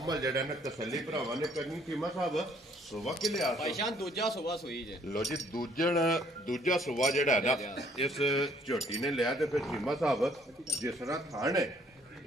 ਜਿਹੜਾ ਨਾ ਤਸੱਲੀ ਭਰਾਵਾਂ ਨੇ ਕਰਨੀ ਕੀਮਾ ਸਾਹਿਬ ਸੁਬਾ ਕਿ ਲਿਆ ਭਾਈਸ਼ਾਨ ਦੂਜਾ ਸੁਬਾ ਸੋਈ ਜੇ ਲੋ ਜੀ ਦੂਜਾ ਸੁਬਾ ਜਿਹੜਾ ਨਾ ਇਸ ਝੋਟੀ ਨੇ ਲਿਆ ਤੇ ਫਿਰ ਕੀਮਾ ਸਾਹਿਬ ਜਿਸ ਤਰ੍ਹਾਂ ਥਾਣ ਹੈ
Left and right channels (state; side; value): normal; both; correlation 0.63